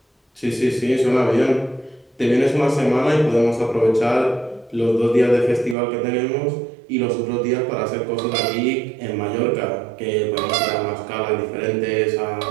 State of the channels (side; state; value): left; drops out; at 5.8 s